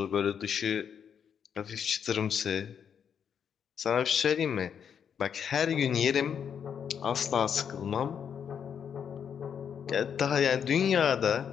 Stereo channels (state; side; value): quieter; right; 7.7 dB